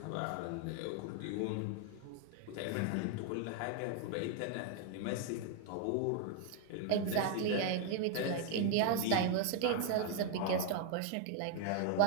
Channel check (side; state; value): both; different; correlation 0.00